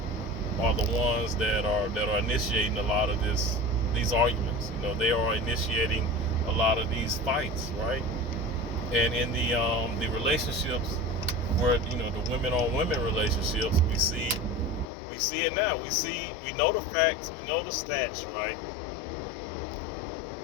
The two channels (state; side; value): drops out; right; at 14.9 s